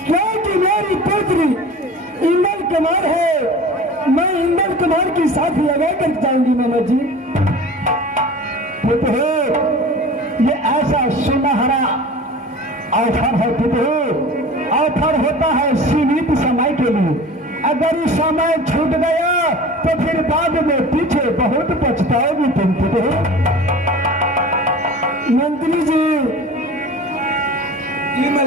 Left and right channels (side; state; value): both; normal; correlation 0.39